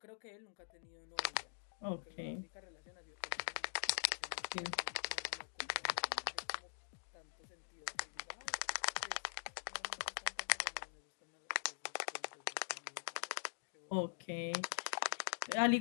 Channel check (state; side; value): silent; right; digital silence